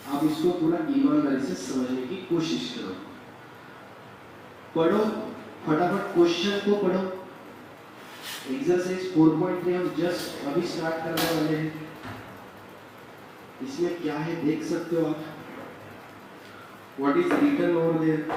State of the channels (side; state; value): both; identical; correlation 1.00